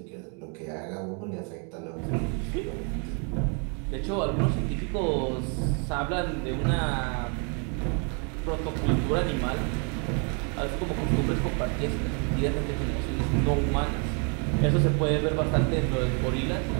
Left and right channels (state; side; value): quieter; left; 37.9 dB